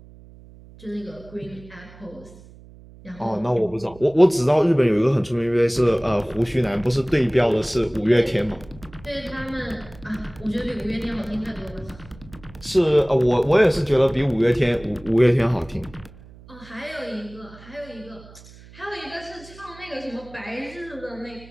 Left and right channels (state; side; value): noise; right; hum, 21 dB below the sound